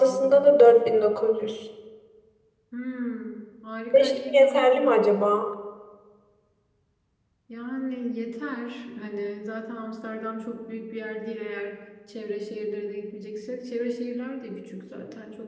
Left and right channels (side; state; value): both; identical; correlation 1.00